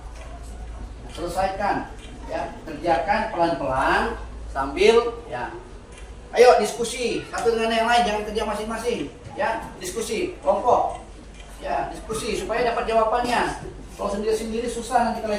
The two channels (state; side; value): identical; both; correlation 1.00